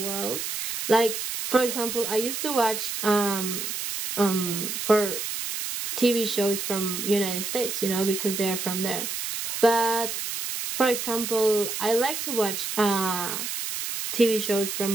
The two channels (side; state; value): right; noise; hiss, 4 dB below the sound